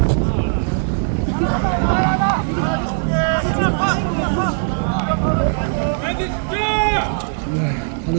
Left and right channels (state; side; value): silent; left; digital silence